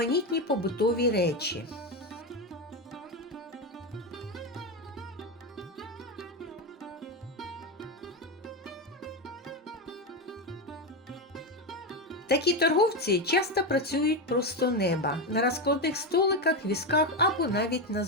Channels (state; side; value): normal; both; correlation 0.12